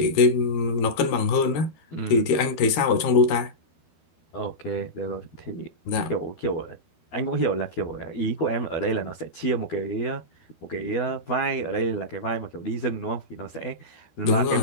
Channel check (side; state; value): right; late; 12 ms